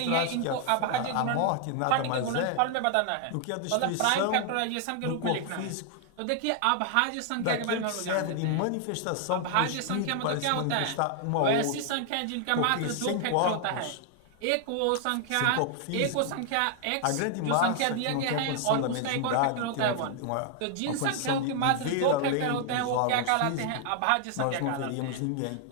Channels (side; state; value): both; different; correlation 0.00